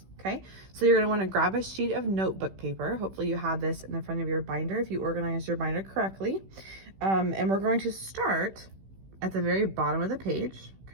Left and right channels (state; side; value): late; left; 16 ms